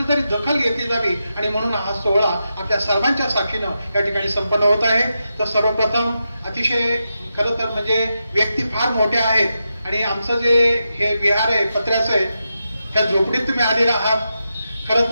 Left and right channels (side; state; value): both; inverted; correlation -0.87